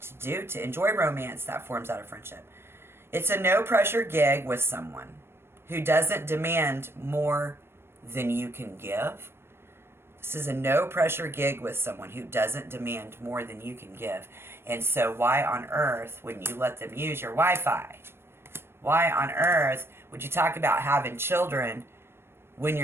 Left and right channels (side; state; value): left; late; 0.12 ms